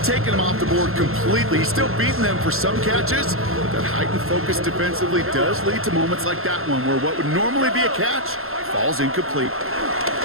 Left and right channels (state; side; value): late; left; 0.61 ms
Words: taken him off the board completely. He's still beating them for some catches. That heightened focus defensively does lead to moments like that one, where what would normally be a catch falls incomplete.